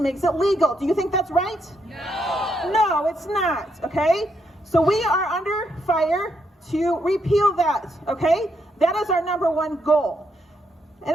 makes it legal. Do you think that's right? No. No, it's not, okay? So we are under fire to repeal that, okay? That is our number one goal.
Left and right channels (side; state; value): both; normal; correlation 0.77